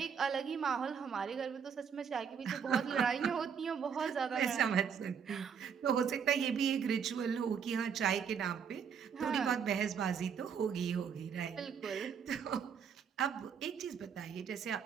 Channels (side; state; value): left; quieter; 7.1 dB